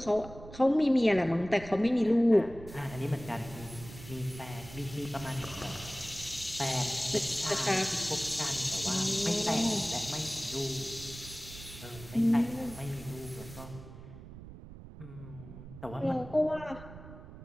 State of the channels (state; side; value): noise; right; rumble, 15 dB below the sound